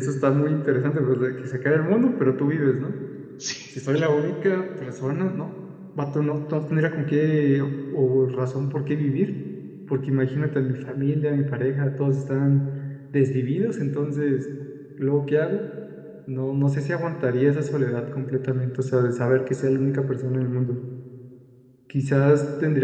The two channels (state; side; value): identical; both; correlation 1.00